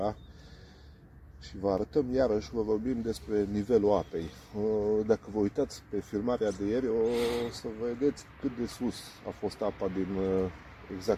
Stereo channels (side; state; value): both; identical; correlation 1.00